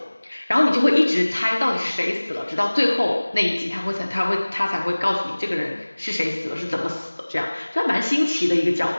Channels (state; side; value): inverted; both; correlation -1.00